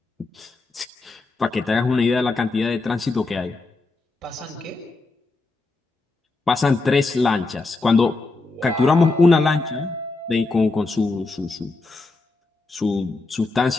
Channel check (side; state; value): right; quieter; 3.5 dB